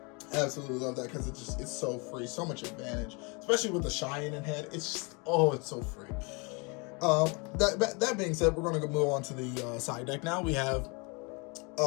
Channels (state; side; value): quieter; right; 30.6 dB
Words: Absolutely love that because it's so free, so much advantage, especially with the Cheyenne in head. It's just, it's so free. That being said, we're going to move on to the side deck now. We have